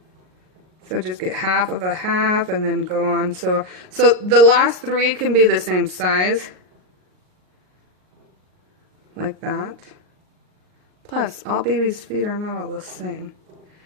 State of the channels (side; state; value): left; late; 38 ms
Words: So just get half of a half and then go on. So the last 3 can be the same size. Like that. Plus, all babies' feet are not all the same.